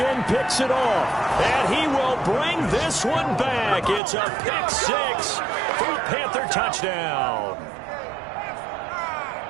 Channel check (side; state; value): left; drops out; at 4.0 s